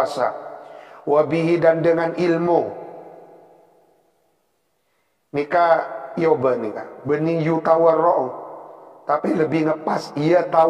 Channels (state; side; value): identical; both; correlation 1.00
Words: Wabihi, dan dengan ilmu nikah yoba nikah benih yu tawarra'u, tapi lebih ngepas ya